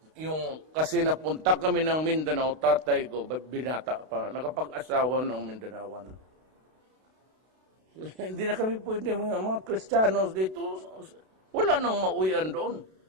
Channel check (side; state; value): left; late; 32 ms